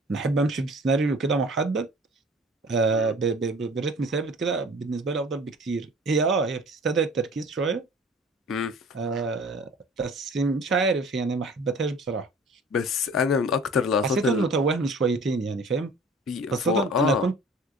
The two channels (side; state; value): both; normal; correlation 0.46